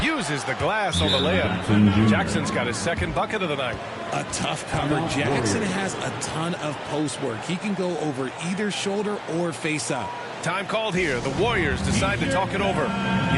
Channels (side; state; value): both; identical; correlation 1.00